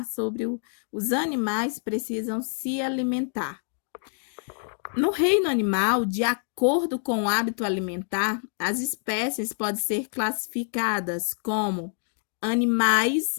sobre os animais precisam se alimentar. No reino animal, de acordo com o hábito alimentar, as espécies podem ser classificadas como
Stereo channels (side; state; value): right; silent; 59 dB below the other